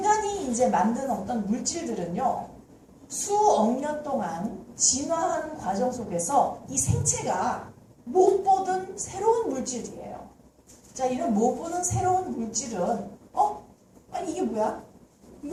이제 만든 어떤 물질들은요, 수억 년 동안 진화하는 과정 속에서 이 생체가 못 보던 새로운 물질이에요. 자, 이런 못 보던 새로운 물질은 아니 이게 뭐야?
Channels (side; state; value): both; identical; correlation 1.00